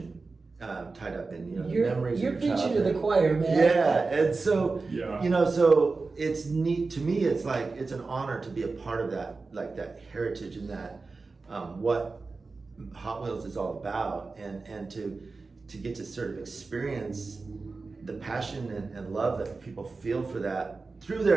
tied up in, you know, the memories. You're of your preaching to the childhood. choir, man. Yeah, and so, Yeah. you know, so it's neat, to me, it's like, it's an honor to be a part of that, like that heritage and that, what Hot Wheels is all about, and to get to sort of experience the passion and love that people feel for that through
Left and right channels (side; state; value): left; quieter; 4.0 dB